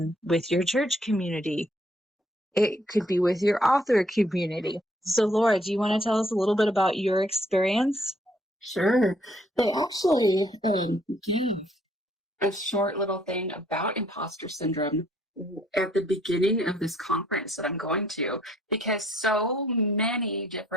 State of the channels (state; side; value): normal; both; correlation 0.66